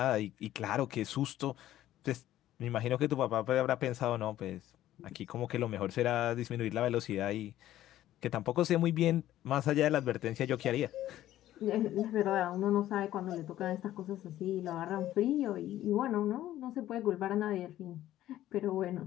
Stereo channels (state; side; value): quieter; right; 13.5 dB